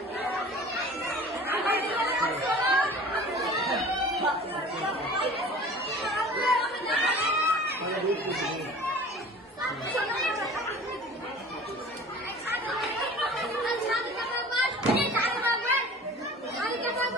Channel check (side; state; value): both; normal; correlation 0.43